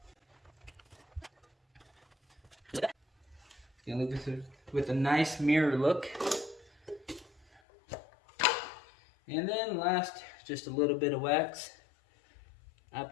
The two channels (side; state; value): right; drops out; at 7.6 s